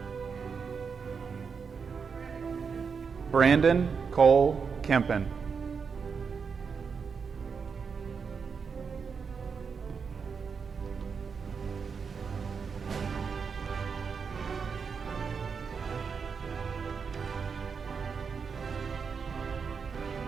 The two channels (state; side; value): quieter; left; 5.8 dB